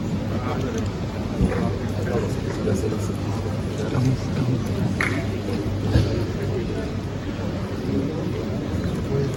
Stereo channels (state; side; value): identical; both; correlation 1.00